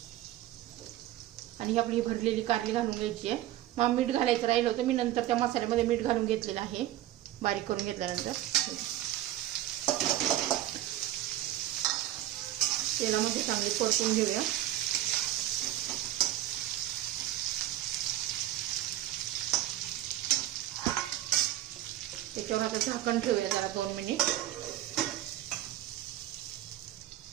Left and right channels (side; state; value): left; quieter; 13.8 dB